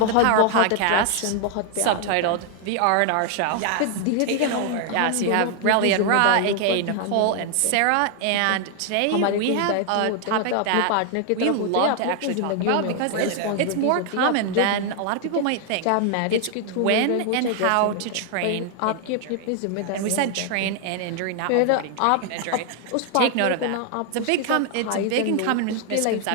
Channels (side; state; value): both; different; correlation 0.00